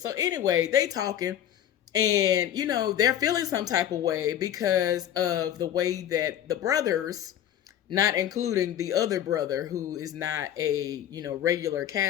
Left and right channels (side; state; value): right; quieter; 10.8 dB